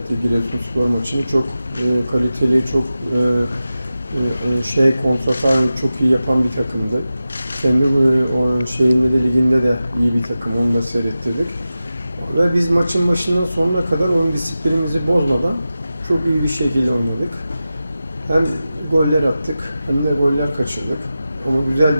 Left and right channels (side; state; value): both; inverted; correlation -0.94